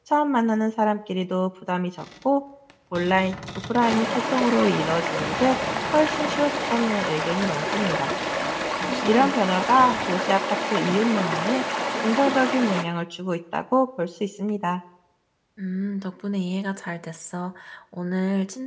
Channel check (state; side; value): identical; both; correlation 1.00